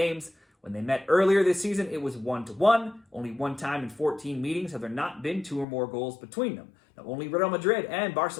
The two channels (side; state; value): right; drops out; at 5.7 s